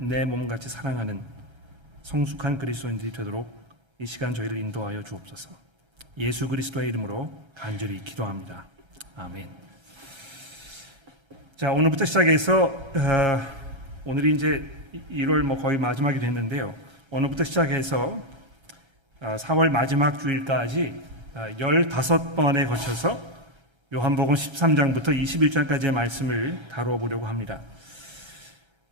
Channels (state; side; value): late; left; 1.3 ms